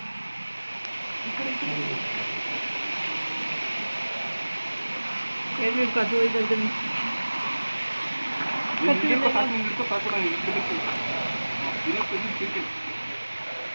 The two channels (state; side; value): inverted; both; correlation -1.00